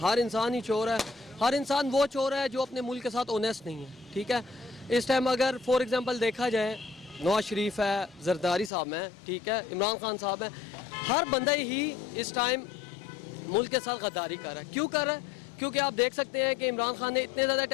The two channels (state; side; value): drops out; right; at 8.7 s